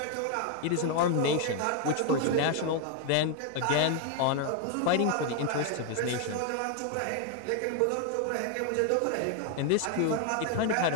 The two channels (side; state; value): both; different; correlation 0.01